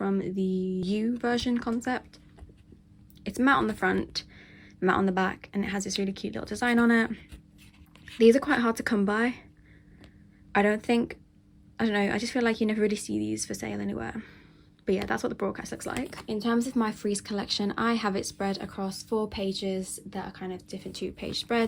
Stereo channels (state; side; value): identical; both; correlation 1.00